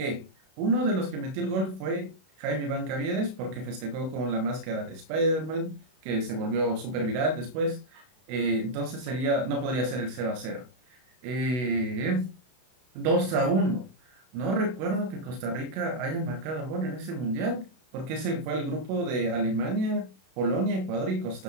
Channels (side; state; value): left; late; 32 ms